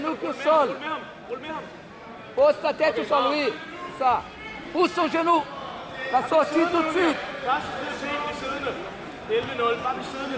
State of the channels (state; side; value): identical; both; correlation 1.00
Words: au sol. Rul med ham. Pose ta tête au sol, oui. Ça. Pousse ton genou. La sortie tout de suite. Første prioritet, bliv siddende. 11-0. Bare bliv siddende.